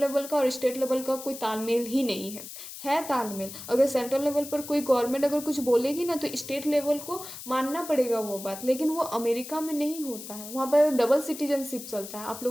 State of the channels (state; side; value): noise; left; hiss, 12 dB below the sound